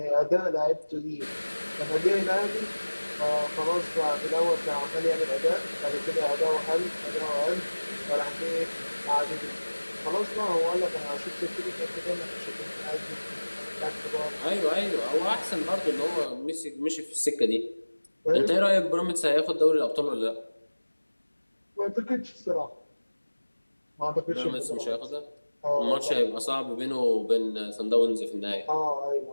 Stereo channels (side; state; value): both; inverted; correlation -1.00